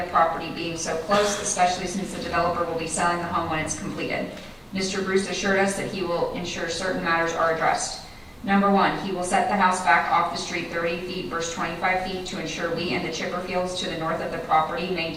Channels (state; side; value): identical; both; correlation 1.00